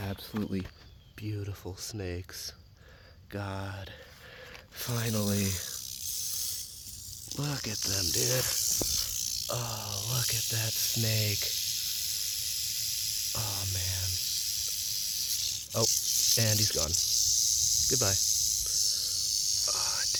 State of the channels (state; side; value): identical; both; correlation 1.00